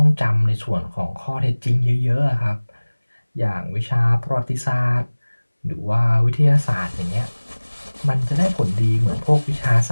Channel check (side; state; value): both; inverted; correlation -1.00